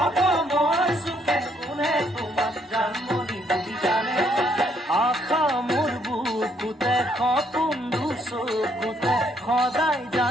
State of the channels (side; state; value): both; normal; correlation 0.70